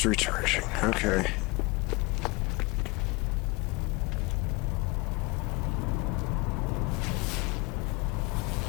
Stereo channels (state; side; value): quieter; right; 26.3 dB